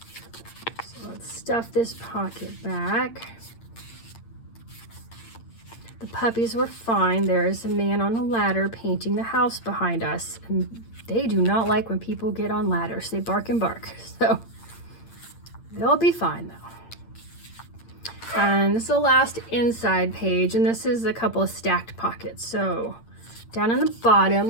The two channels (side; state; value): right; late; 8.7 ms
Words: So let's stuff this pocket back. The puppies were fine. There is a man on a ladder painting the house behind us, and they do not like when people get on ladders. They bark and bark. So they'll be fine though. And this is the last inside page, and this is a couple of stacked pockets. So down in the bottom,